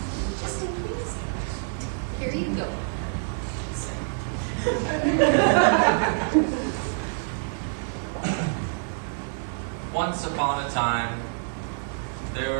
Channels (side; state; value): left; silent; digital silence